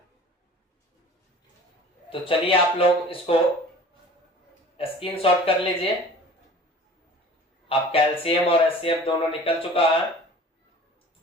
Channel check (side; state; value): both; normal; correlation 0.44